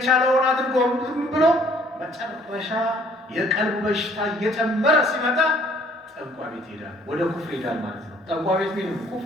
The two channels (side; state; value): both; normal; correlation 0.59